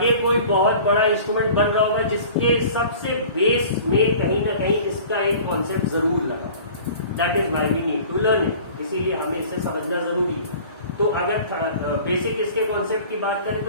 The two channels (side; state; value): both; inverted; correlation -0.44